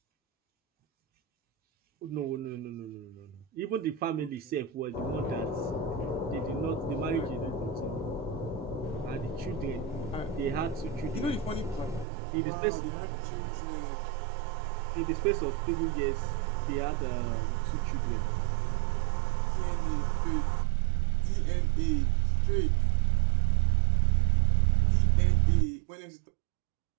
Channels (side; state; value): left; drops out; at 12.1 s